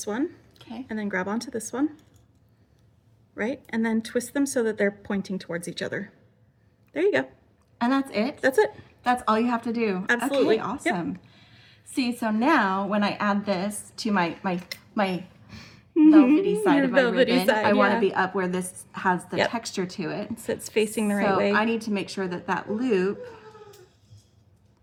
one, okay, and then grab onto this one. Right? And then twist them so that they're pointing towards each other. There you go. And that's it? That's it. That's all you have to do. Absolutely. Okay, awesome. Yep. See, so now when I add this to my velvety side of my ribbon, I want to be up where this has the texture to it. So it's facing the right way. So I need to make sure that that loop,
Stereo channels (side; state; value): both; identical; correlation 1.00